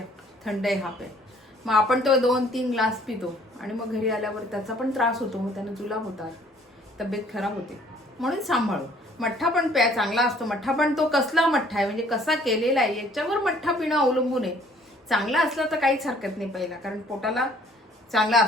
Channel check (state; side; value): normal; both; correlation 0.58